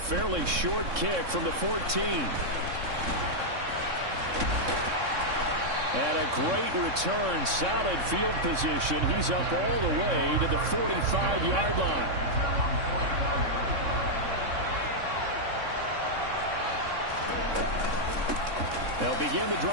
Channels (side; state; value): left; late; 3.6 ms